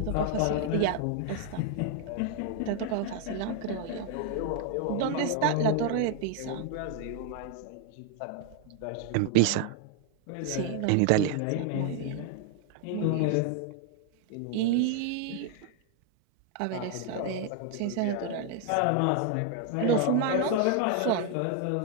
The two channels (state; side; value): different; both; correlation 0.00